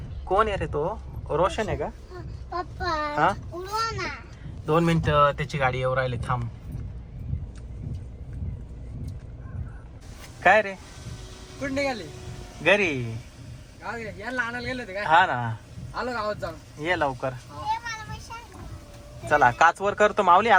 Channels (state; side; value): identical; both; correlation 1.00